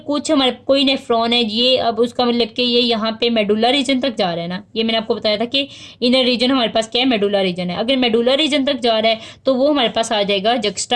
कुछ हमारे कोई नेफ्रॉन है ये, अब उसका मतलब कि ये यहाँ पे मेडुला रीजन तक जा रहा है ना, ये मैंने आपको बताया था कि इनर रीजन हमारे पास क्या है, मेडुला रीजन है। अगर मेडुला रीजन तक जा रहा है तो वो हमारे पास आ जाएगा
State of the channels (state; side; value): identical; both; correlation 1.00